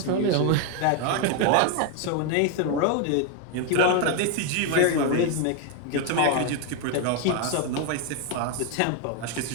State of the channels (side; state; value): both; different; correlation 0.01